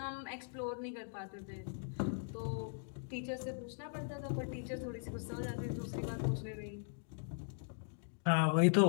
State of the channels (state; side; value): silent; right; digital silence